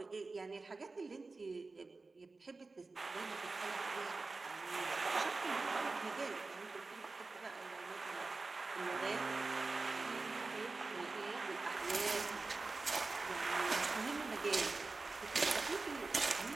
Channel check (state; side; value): quieter; left; 3.7 dB